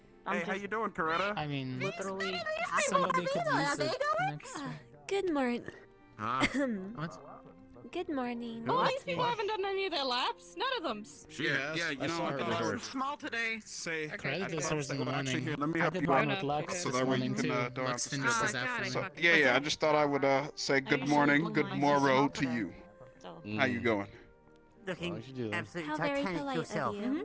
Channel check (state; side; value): identical; both; correlation 1.00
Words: I'm Hey, just how you doing, Coretta? I mean, literally. somebody could use it next week. Good morning. Huh? What? Good morning. Oh, these people haven't done any of their laps? None of them. She has. Yeah, you I know, saw I her thought I would rehearse. Small today. say. Credit Okay. this hers in the Actually, morning. here, let me I help did you one out. with Lux So this that way you morning can, too. don't have Lux to finished Oh, this God, I afternoon. fucking- Yeah, I just thought I would say good usually morning, look good nice morrow as to well. you. So. How you going? Looking Why don't you do that? absolutely How very titanic polite yourself. of